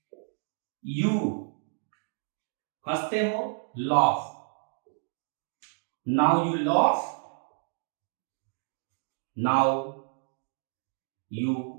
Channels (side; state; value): left; silent; digital silence